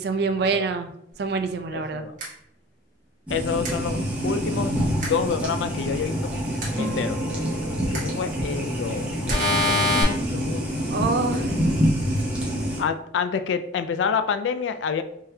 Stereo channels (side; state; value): both; normal; correlation 0.41